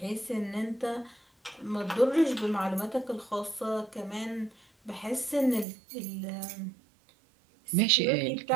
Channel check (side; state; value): left; drops out; at 5.7 s